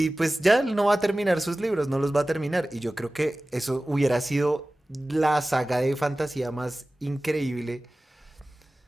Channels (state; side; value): normal; both; correlation 0.97